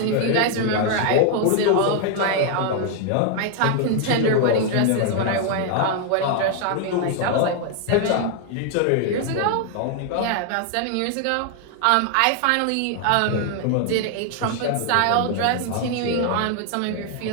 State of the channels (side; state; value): both; different; correlation 0.00